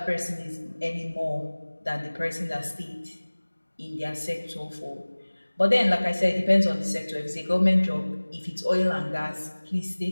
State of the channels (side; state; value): both; inverted; correlation -1.00